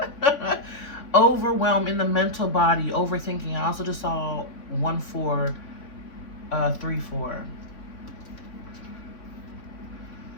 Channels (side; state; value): right; late; 3.6 ms